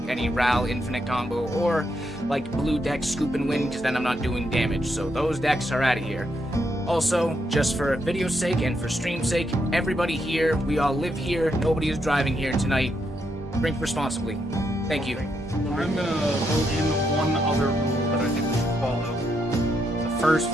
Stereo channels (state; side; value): normal; both; correlation 0.79